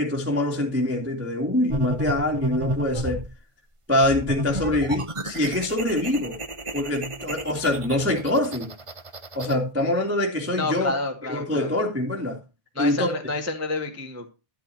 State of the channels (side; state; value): left; late; 1.5 ms